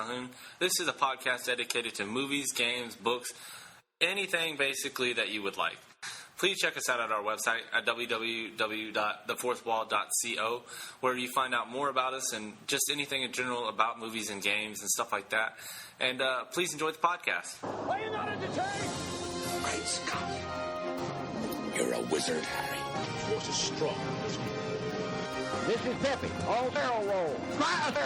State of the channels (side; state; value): both; identical; correlation 1.00